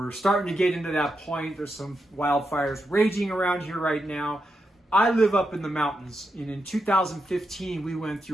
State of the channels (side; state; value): both; normal; correlation 0.85